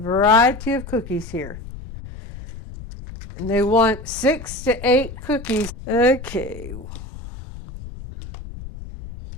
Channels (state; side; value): noise; left; rumble, 13 dB below the sound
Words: of cookies here. And they want 6 to 8 cookies. Okay.